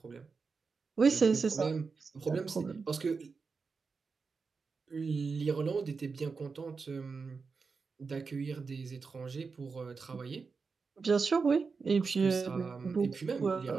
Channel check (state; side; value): quieter; left; 4.8 dB